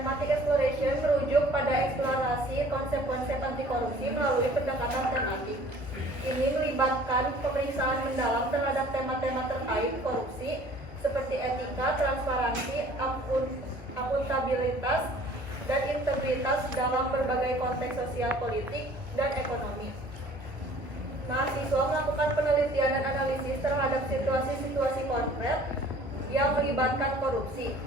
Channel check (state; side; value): normal; both; correlation 0.51